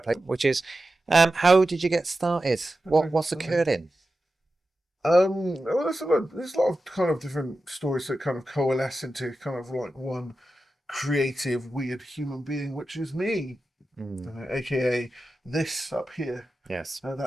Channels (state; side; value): normal; both; correlation 0.92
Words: place, which is, how did you get started? What's occurred in? Well, there's a lot of kind of different stories that kind of coalesce into kind of like one creative, weird human being, which is me, Mm, aka this up here. yes.